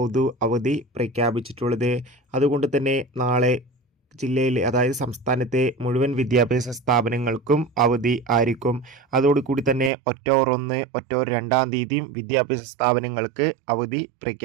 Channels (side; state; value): left; drops out; at 9.9 s